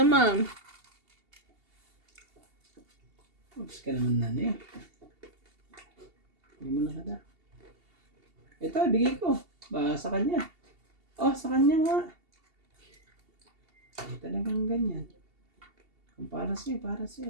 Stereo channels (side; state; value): left; late; 2.8 ms